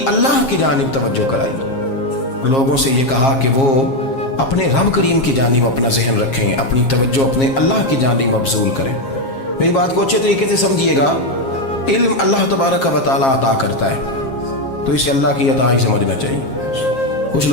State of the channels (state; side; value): late; right; 7.5 ms